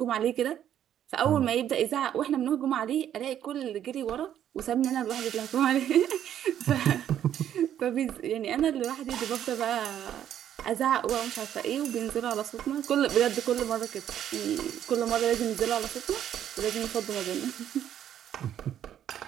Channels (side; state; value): left; quieter; 10.4 dB